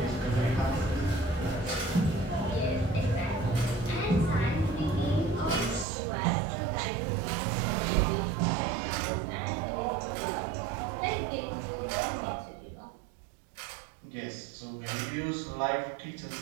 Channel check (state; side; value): drops out; left; at 5.9 s